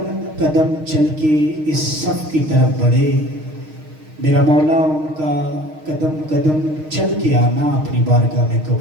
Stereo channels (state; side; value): late; left; 6.5 ms